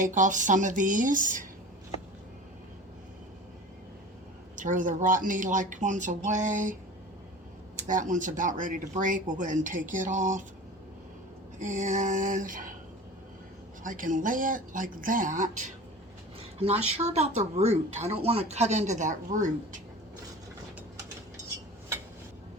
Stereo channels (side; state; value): both; normal; correlation 0.37